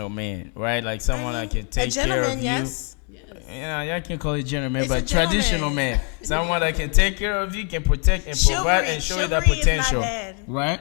man, right? Like someone that can A take care of gentleman, you. yes. Yeah, y'all can call it gentleman, It's but a traditional gentleman. man, someone that can take care of you, can protect and provide and show you that Chivalry is not potential, bad. right?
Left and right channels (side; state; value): right; quieter; 38.3 dB